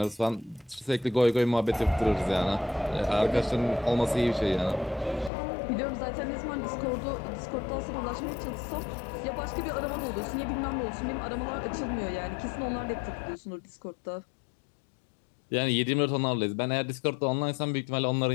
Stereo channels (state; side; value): drops out; right; at 5.3 s